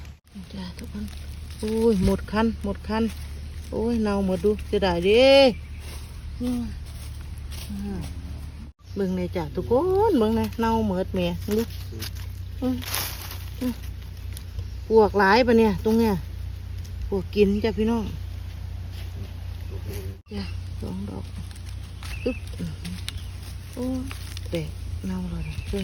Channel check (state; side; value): identical; both; correlation 1.00